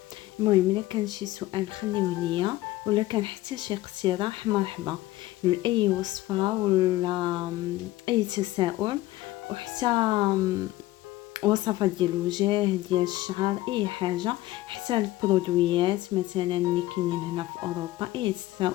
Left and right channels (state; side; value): quieter; right; 16.9 dB